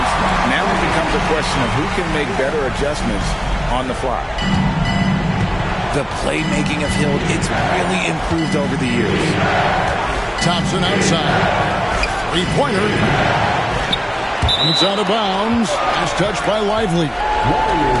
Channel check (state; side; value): identical; both; correlation 1.00